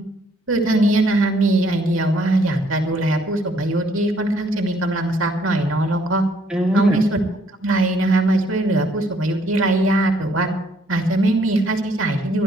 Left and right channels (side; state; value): both; normal; correlation 0.66